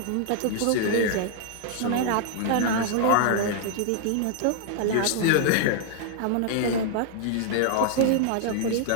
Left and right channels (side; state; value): both; different; correlation -0.01